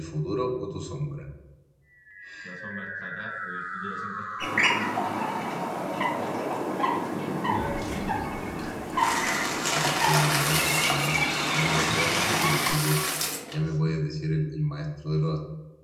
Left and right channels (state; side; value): identical; both; correlation 1.00